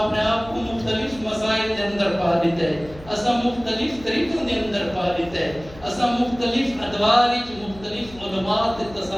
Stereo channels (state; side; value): noise; left; hum, 19 dB below the sound